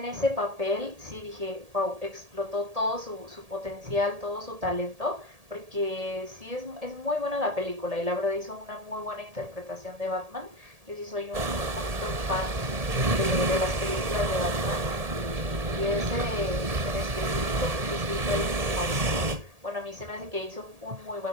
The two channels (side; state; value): left; late; 1.8 ms